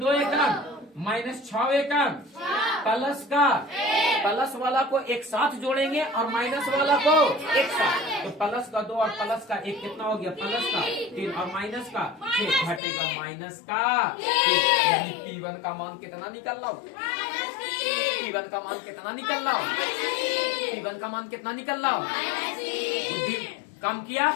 एकम -6 एकम प्लस का प्लस वाला को एक साथ जोड़ेंगे और माइनस वाला को एक साथ। तो प्लस का 2 और प्लस का 1 कितना हो गया? प्लस का 3 और माइनस का 6 घटेगा माइनस का 3। यानी p1 का मान कितना निकल रहा हो? p1 का मान कितना निकल रहा हो? p1 वन का मान कितना निकल रहा हो? बुद्धि काम किया।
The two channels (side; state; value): right; drops out; at 12.8 s